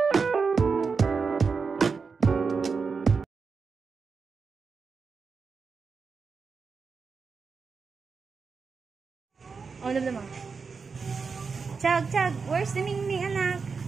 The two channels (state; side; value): quieter; left; 5.1 dB